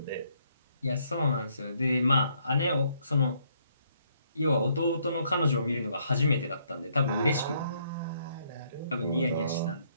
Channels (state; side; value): inverted; both; correlation -0.70